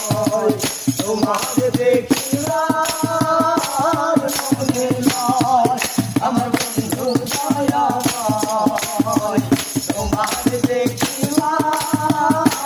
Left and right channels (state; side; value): identical; both; correlation 1.00